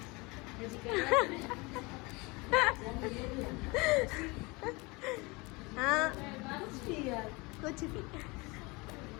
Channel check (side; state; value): right; quieter; 25.7 dB